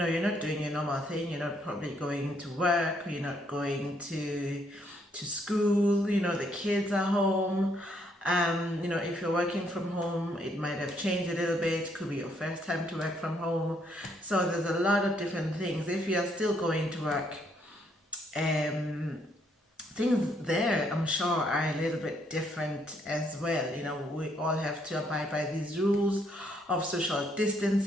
not doing your normal thing. You're not probably going to work. You're not going to school. The kids are home. If you're working from home, it might have changed a little bit. Could be your first time to work from home. So there's a lot of different things. If you're still going to work, um, things there, I'm sure, are a little bit different as well. We all have to abide by these rules of social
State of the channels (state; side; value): normal; both; correlation 0.71